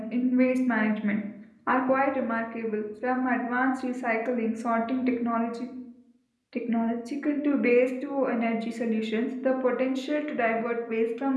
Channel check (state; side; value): identical; both; correlation 1.00